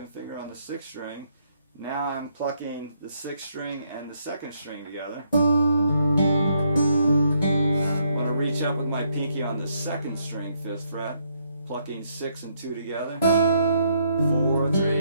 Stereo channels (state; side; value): inverted; both; correlation -0.73